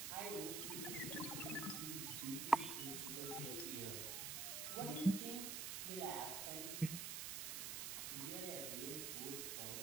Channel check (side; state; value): right; noise; hiss, 2 dB below the sound